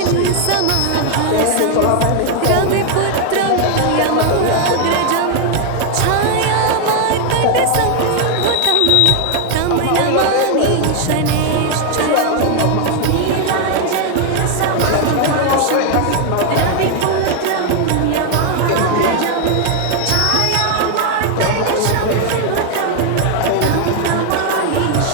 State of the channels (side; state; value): both; different; correlation 0.01